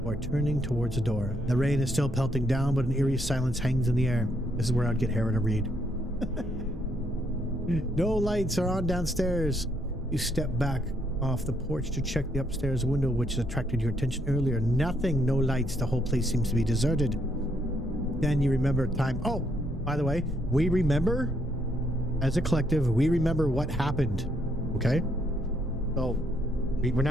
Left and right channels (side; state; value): both; normal; correlation 0.73